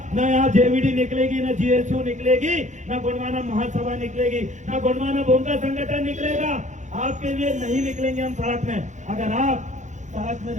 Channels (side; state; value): left; late; 0.35 ms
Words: ना यहाँ जेवीडी निकलेगी, ना जीएसयू निकलेगी, ना गोंडवाना महासभा निकलेगी, ना गोंडवाना भूमका संगठन निकलेगा। आपके लिए नहीं निकलेंगे हम सड़क में, अगर आप सड़क में